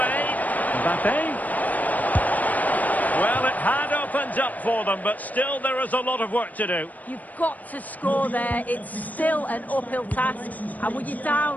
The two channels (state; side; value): late; right; 0.077 ms